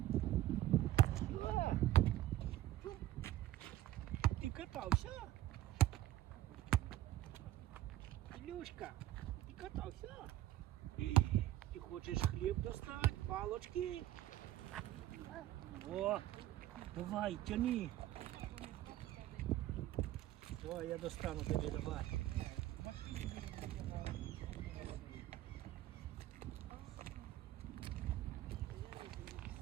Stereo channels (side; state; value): left; quieter; 14.3 dB